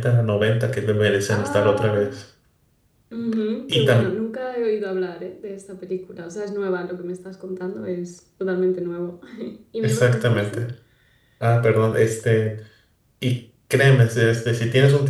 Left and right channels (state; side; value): identical; both; correlation 1.00